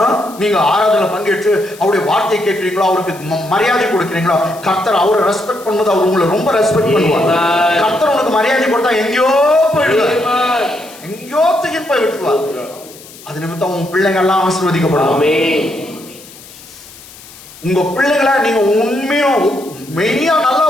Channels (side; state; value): left; noise; hiss, 20 dB below the sound